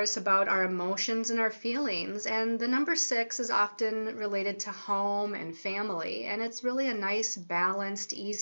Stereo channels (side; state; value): both; inverted; correlation -1.00